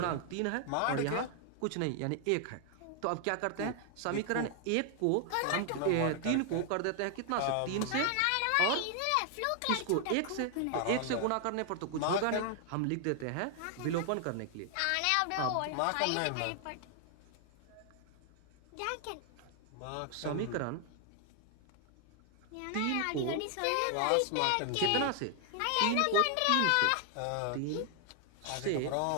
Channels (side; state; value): both; different; correlation 0.00